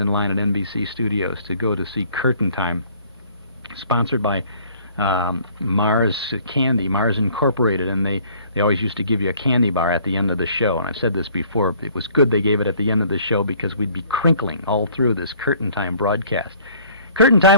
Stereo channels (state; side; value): inverted; both; correlation -0.57